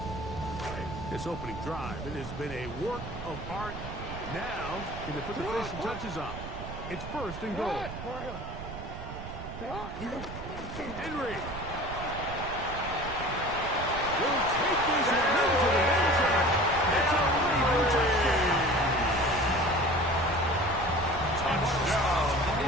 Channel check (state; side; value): noise; right; rumble, 10 dB below the sound